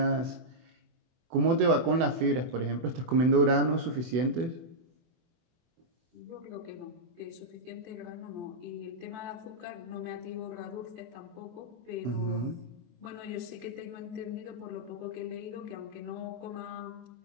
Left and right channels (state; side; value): late; left; 24 ms